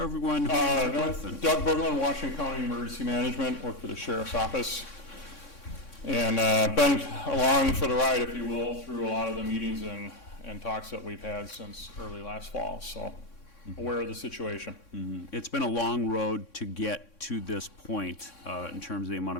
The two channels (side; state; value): right; late; 3.6 ms